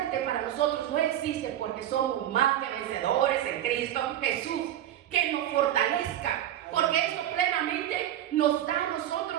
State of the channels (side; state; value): left; quieter; 11.7 dB